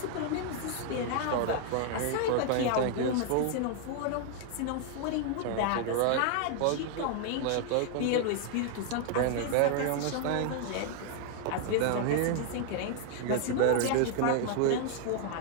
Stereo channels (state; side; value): different; both; correlation 0.00